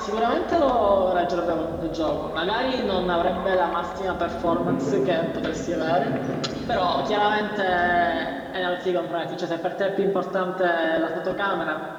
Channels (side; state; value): both; identical; correlation 1.00